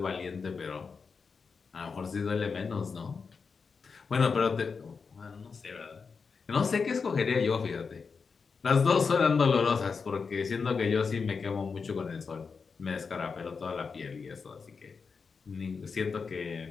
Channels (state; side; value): quieter; right; 5.2 dB